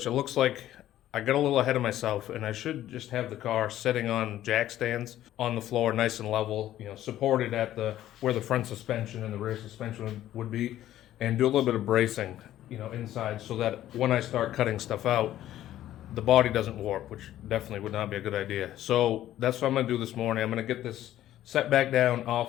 it looks like I got a little ahead of myself, and I should just have the car sitting on jack stands on the floor, nice and level, supported at where the front suspension and the rear suspension would be, and do a little bit of bracing, inside, so that when I start cutting stuff out, the body doesn't warp, which definitely would not be a good idea. So that's what I'm gonna do this morning. I'm gonna get this set back down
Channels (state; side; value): quieter; right; 13.0 dB